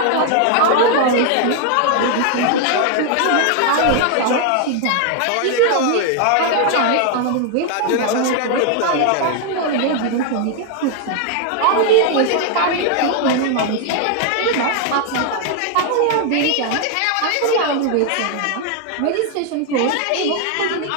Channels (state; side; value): different; both; correlation 0.00